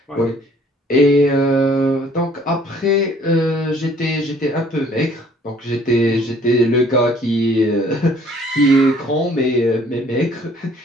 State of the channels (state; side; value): normal; both; correlation 0.58